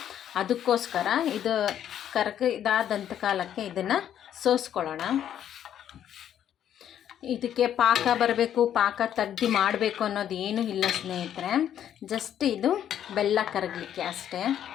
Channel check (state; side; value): quieter; right; 10.2 dB